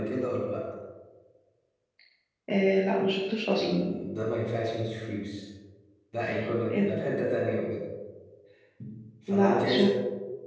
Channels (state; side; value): identical; both; correlation 1.00